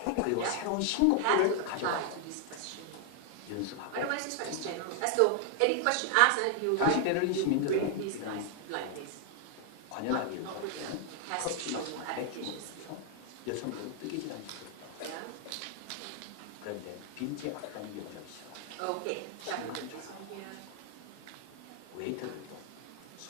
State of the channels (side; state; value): both; different; correlation 0.00